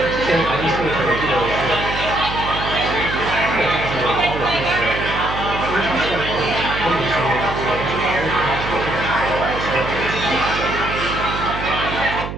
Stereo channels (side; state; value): right; noise; hum, 7 dB below the sound